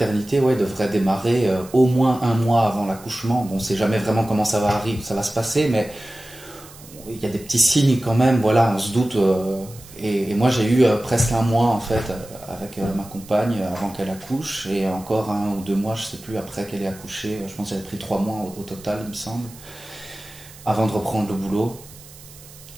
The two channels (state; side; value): noise; right; hiss, 20 dB below the sound